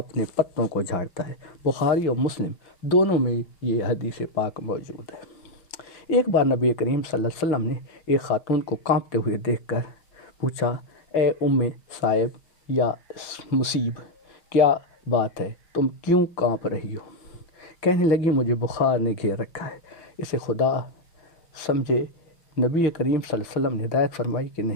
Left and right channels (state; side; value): late; right; 5.9 ms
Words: پتوں کو جھاڑتا ہے۔ بخاری اور مسلم دونوں میں یہ حدیث پاک موجود ہے۔ ایک بار نبی کریم صلی اللہ علیہ وسلم نے ایک خاتون کو کانپتے ہوئے دیکھ کر پوچھا، اے ام صائب یا مصیب، کیا بات ہے، تم کیوں کانپ رہی ہو؟ کہنے لگی، مجھے بخار نے گھیر رکھا ہے۔ اسے خدا سمجھے۔ نبی کریم صلی اللہ علیہ وسلم نے ہدایت فرمائی کہ